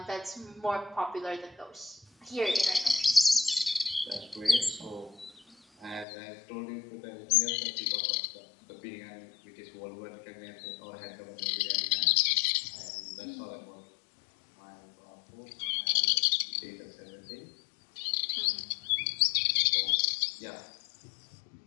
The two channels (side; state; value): right; drops out; at 6.1 s